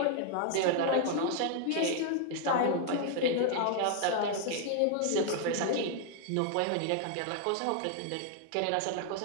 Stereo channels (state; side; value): different; both; correlation 0.00